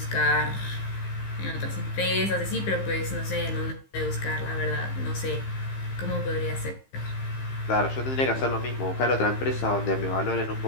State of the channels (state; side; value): late; right; 15 ms